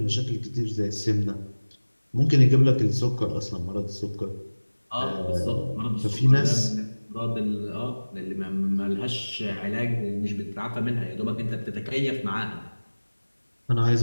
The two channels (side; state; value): both; inverted; correlation -1.00